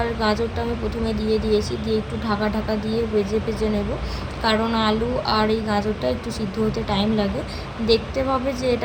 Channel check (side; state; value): both; identical; correlation 1.00